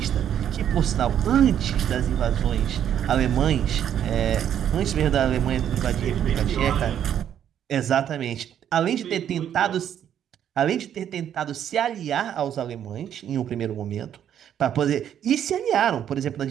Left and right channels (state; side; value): quieter; left; 9.8 dB